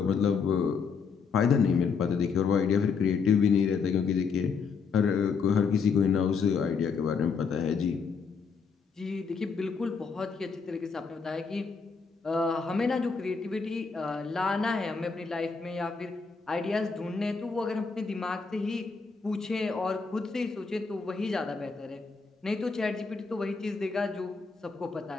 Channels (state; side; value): quieter; right; 5.4 dB